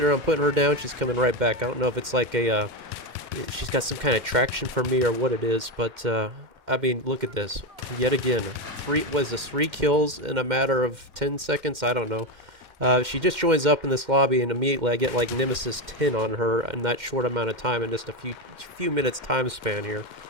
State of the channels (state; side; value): late; left; 2.1 ms